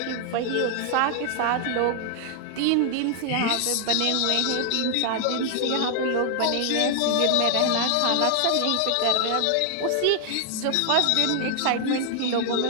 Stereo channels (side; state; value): both; different; correlation 0.00